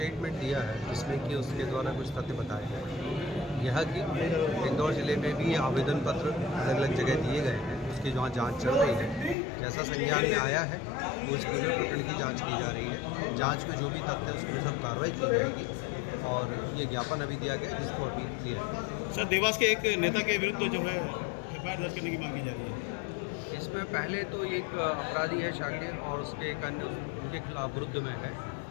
दिया है जिसमें कि उसके द्वारा कुछ तथ्य बताए गए। यह कि इंदौर ज़िले में भी आवेदन पत्र अलग अलग जगह दिए गए हैं, उसकी वहाँ जांच चल रही है। जैसा संज्ञान में आया है उस पूरे प्रकरण की जांच की जा रही है। जांच में जो भी तथ्य है उसके सब कार्रवाई की जाएगी और ये ज्ञापन अभी दिया गया जिसको अभी क्लियर है। सर, देवास के एक नेता के विरुद्ध जो है एफआईआर दर्ज करने की मांग की जा रही है। इसमें पहले तो एक अपराधी है शाकिर और उसके एक अन्य उनके खिलाफ विरुद्ध में है।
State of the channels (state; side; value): drops out; right; at 9.3 s